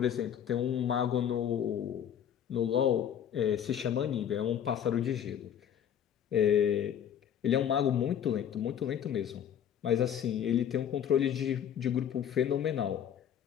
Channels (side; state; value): right; quieter; 9.3 dB